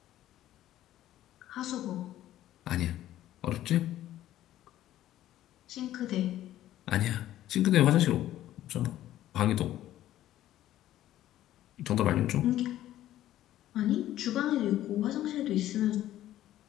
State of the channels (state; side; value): quieter; right; 13.3 dB